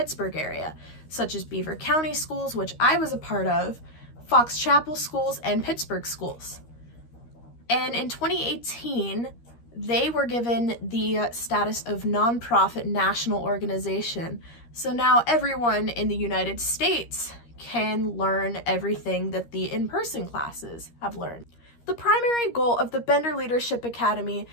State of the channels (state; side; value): late; right; 13 ms